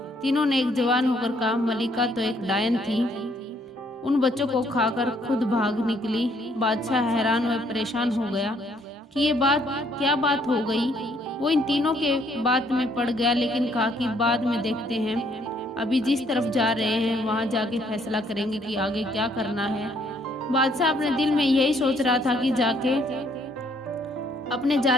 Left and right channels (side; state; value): both; normal; correlation 0.67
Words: तीनों ने एक जवान होकर कहा, मलिका तो एक डायन थी, उन बच्चों को खाकर खुद भाग निकली। बादशाह हैरान व परेशान हो गया कि ये क्या बात हो गई। वो इन तीनों के बात में पड़ गया, लेकिन कहा कि बाद में देखते हैं, अभी जिस तरफ जा रहे हैं वहां जाके फैसला करेंगे कि आगे क्या करना है। बादशाह अपने दिल में यही सोच रहा था कि जाके अपने